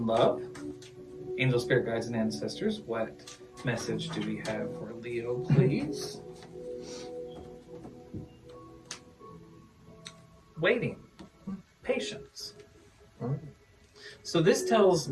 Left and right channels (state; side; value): identical; both; correlation 1.00